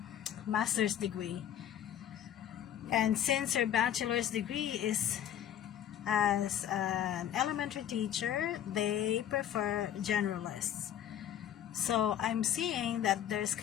master's degree. And since your bachelor's degree is as an elementary teacher, they prefer generalists. So I'm seeing that there's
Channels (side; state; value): right; quieter; 10.5 dB